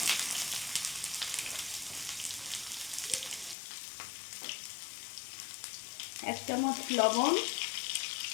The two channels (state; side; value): drops out; right; at 3.6 s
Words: এক চামচ লবণ,